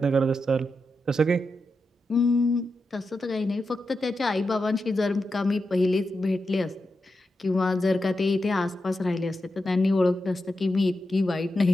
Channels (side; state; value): both; normal; correlation 0.88